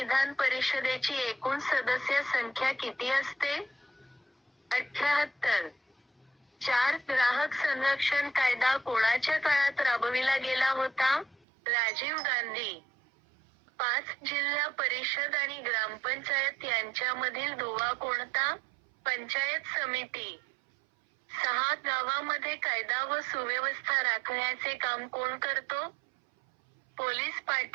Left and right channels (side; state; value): left; drops out; at 11.5 s